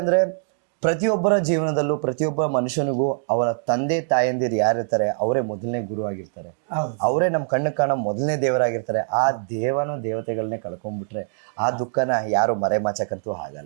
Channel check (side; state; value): left; silent; digital silence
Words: ಅಂದ್ರೆ ಪ್ರತಿಯೊಬ್ಬರ ಜೀವನದಲ್ಲೂ ಪ್ರತಿಯೊಬ್ಬ ಮನುಷ್ಯನಿಗೂ ಅವರ ತಂದೆ ತಾಯಂದಿರು ಯಾರಿರ್ತಾರೆ ಅವರೇ ಮೊದಲನೇ ಗುರು ಆಗಿರ್ತಾರೆ, ಅವರೇ ನಮ್ಮ ಕಣ್ಣು ಕಾಣೋ ಮೊದಲನೇ ದೇವರಾಗಿರ್ತಾರೆ. ಆ ದೇವತೆಗಳನ್ನೇ ಕಳ್ಕೊಂಡ್ಬಿಟ್ರೆ ಆ ದುಃಖನ ಯಾರು ಮರೆಮಾಚಕ್ಕಂತೂ